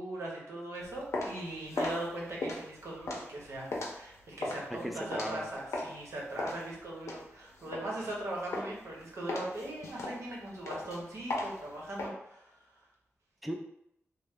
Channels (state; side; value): normal; both; correlation 0.77